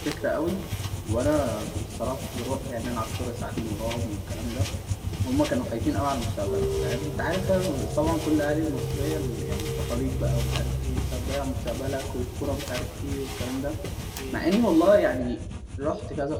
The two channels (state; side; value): identical; both; correlation 1.00